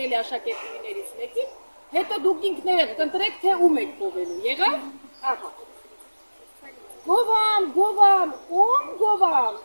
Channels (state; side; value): inverted; both; correlation -1.00